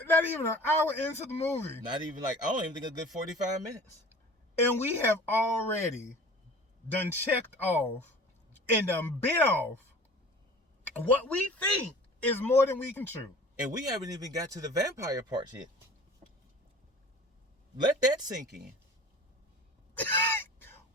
hour into the movie. Not even I don't even think a good 45 minutes. And we have already done checked off and done bit off what we think is more than we can chew. And we haven't even got to the vampire parts yet. Let that sink in.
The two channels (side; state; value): both; normal; correlation 0.43